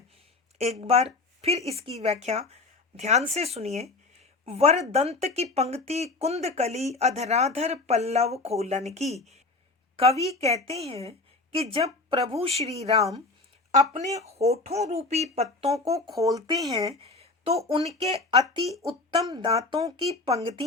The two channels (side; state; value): right; quieter; 3.4 dB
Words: एक बार फिर इसकी व्याख्या ध्यान से सुनिए। वरदंत की पंक्ति कुंद कली अधराधर पल्लव खोलन की। कवि कहते हैं कि जब प्रभु श्री राम अपने होठों रूपी पत्तों को खोलते हैं तो उनके अति उत्तम दांतों की